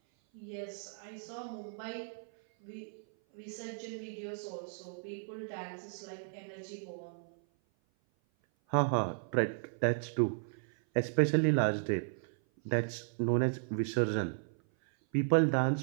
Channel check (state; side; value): silent; left; 54 dB below the other